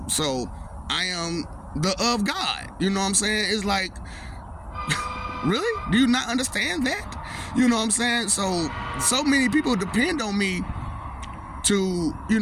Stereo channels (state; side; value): identical; both; correlation 1.00